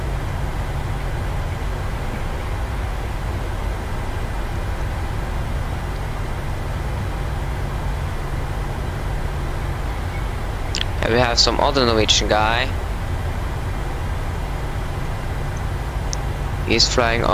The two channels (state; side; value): identical; both; correlation 1.00